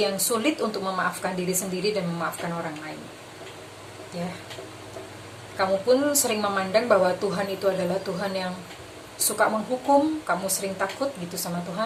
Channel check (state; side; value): identical; both; correlation 1.00